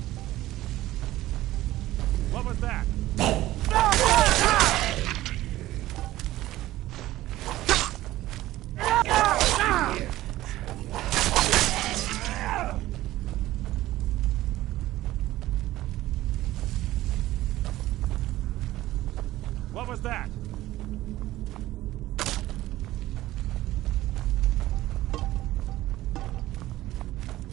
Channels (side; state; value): left; quieter; 15.9 dB